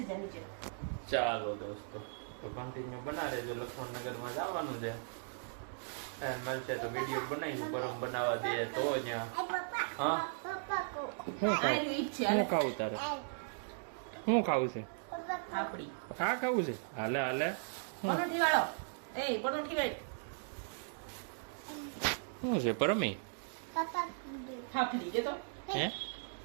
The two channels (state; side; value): silent; left; digital silence